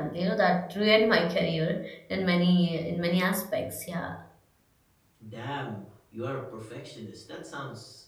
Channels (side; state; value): both; identical; correlation 1.00